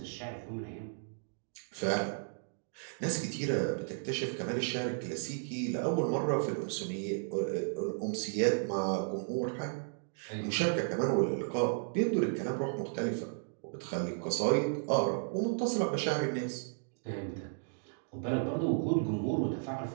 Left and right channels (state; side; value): silent; left; digital silence